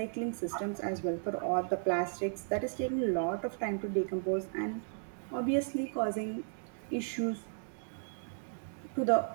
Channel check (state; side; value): silent; left; digital silence